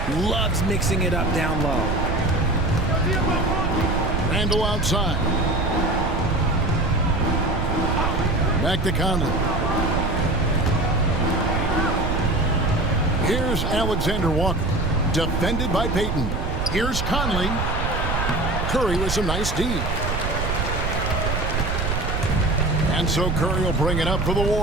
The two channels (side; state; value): right; noise; rumble, 1 dB below the sound